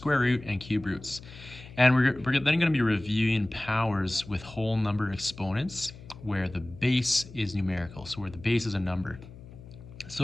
root, and cube roots. And we're then going to be reviewing powers with whole number exponents where the base is numerical, so where the base is a number.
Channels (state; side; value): noise; left; hum, 17 dB below the sound